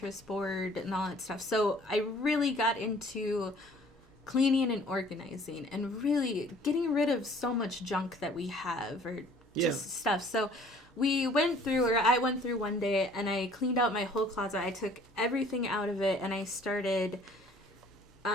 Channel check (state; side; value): normal; both; correlation 0.54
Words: board and all that stuff, so I really got into cleaning and organizing, and really getting rid of so much junk that we have, or just stuff. So I went through one day, and I cleaned out my whole closet. I took everything out of it, and I started